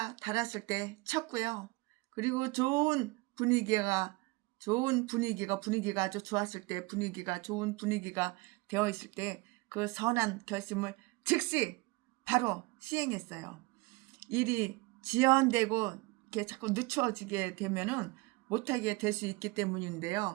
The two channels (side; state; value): left; quieter; 24.1 dB